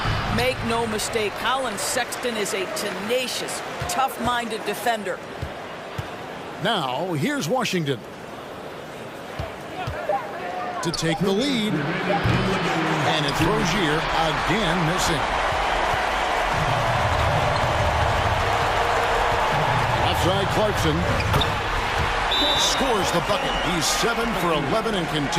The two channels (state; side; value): identical; both; correlation 1.00